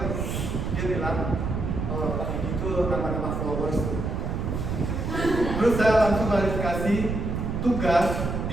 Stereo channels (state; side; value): noise; right; rumble, 2 dB below the sound